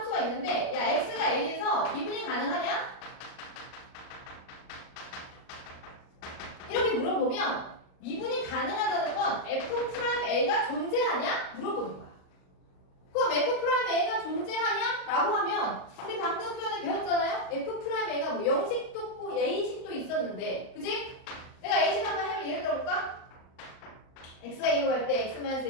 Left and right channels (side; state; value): right; late; 38 ms